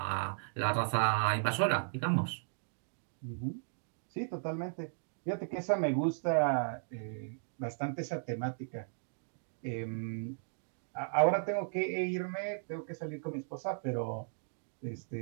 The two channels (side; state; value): left; silent; digital silence